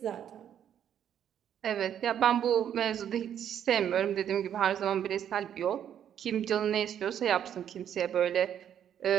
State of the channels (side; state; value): left; quieter; 9.6 dB